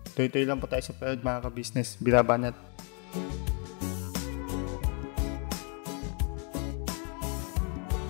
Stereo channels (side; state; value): right; quieter; 37.5 dB